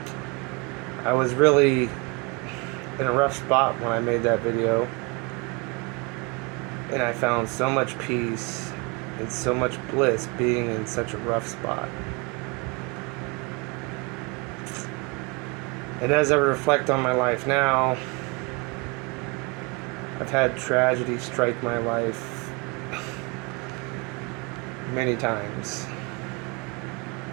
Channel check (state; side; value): quieter; left; 28.5 dB